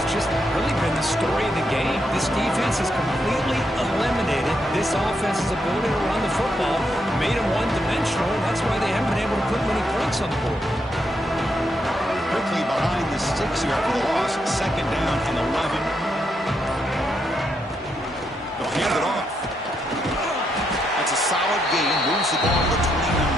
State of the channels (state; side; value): normal; both; correlation 0.80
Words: just really been the story of the game. This defense has completely eliminated this offense's ability to run the football, made them one-dimensional, and that's why they haven't been able to put many points on the board. Quickly behind the sticks here after the loss. Second down and 11. They'll hand it off. That's a solid gain. Moves the ball to the